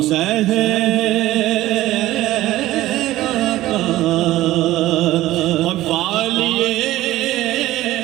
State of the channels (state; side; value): quieter; left; 15.7 dB